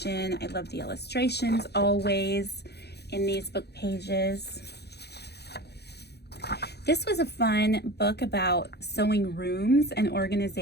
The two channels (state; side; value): late; right; 0.48 ms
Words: I love the illustrations always in these book pages. This was a fun book about sewing rooms and